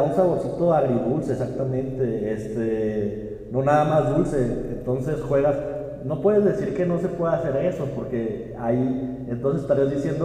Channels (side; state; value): both; identical; correlation 1.00